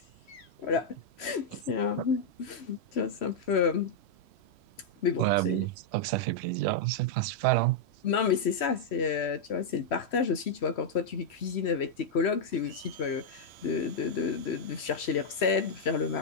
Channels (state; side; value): late; right; 3.1 ms